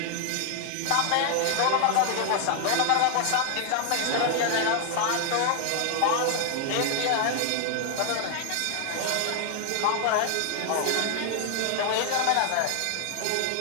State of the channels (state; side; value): different; both; correlation 0.00